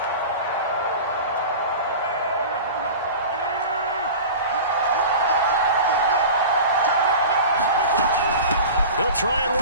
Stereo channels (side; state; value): both; inverted; correlation -0.34